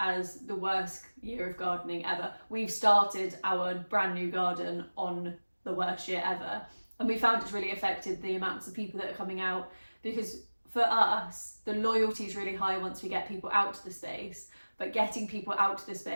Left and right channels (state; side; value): inverted; both; correlation -1.00